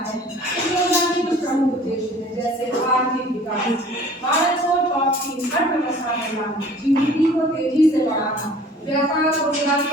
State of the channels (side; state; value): both; normal; correlation 0.49